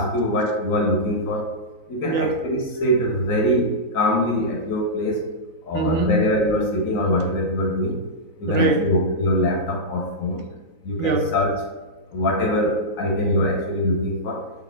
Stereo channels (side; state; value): right; late; 3.9 ms